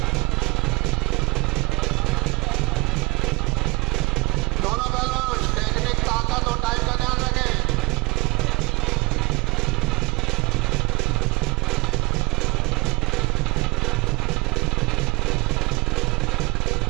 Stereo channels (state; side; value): quieter; left; 25.8 dB